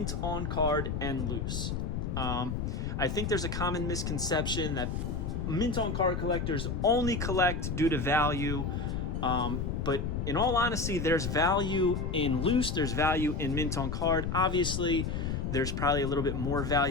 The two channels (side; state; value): left; noise; rumble, 2 dB below the sound